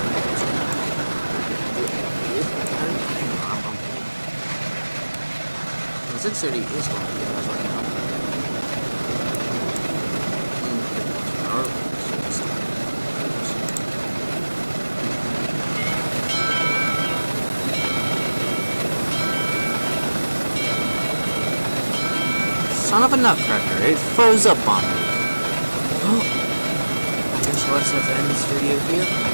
I'm the 630 is going pretty fast right now. Pretty fast per hour. Son of a nutcracker, it froze up on me. Well, I guess I'll just have to end this video here. I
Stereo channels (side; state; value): both; inverted; correlation -1.00